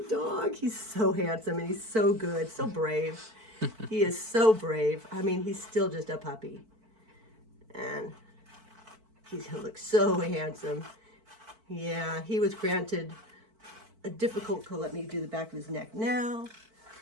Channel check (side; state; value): left; late; 4.5 ms